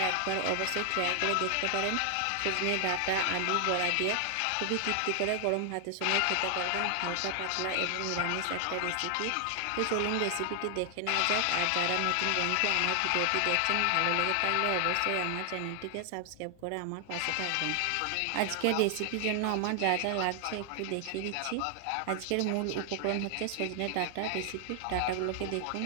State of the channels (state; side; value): different; both; correlation 0.00